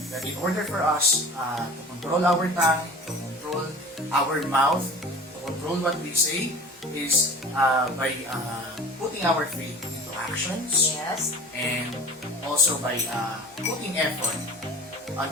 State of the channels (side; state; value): both; normal; correlation 0.40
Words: that in order for us to control our tongue, to control our mouth, to control what we say, is by putting our faith into actions. Yes. And also by putting effort on